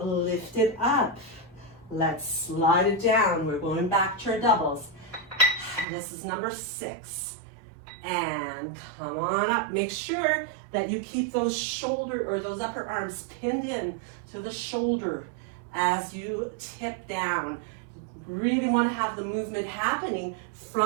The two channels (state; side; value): drops out; left; at 5.9 s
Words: it up. Let's slide it down. We're going back to our doubles. This is number 6. And come on up. Make sure that you keep those shoulder or those upper arms pinned in to the shoulder as you tip down. Really want to have the movement happening